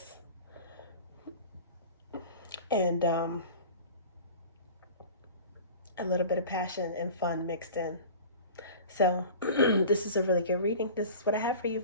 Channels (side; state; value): both; inverted; correlation -0.38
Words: and a little bit of passion and fun mixed in. So this is a really good reading. This is what I have for you,